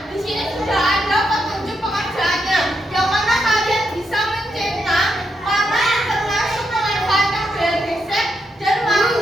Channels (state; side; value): normal; both; correlation 0.82